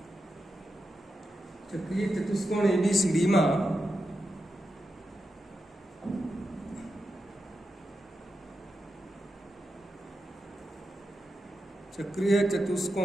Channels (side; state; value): both; normal; correlation 0.88